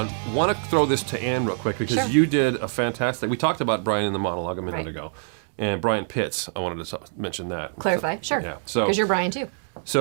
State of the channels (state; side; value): silent; left; 62 dB below the other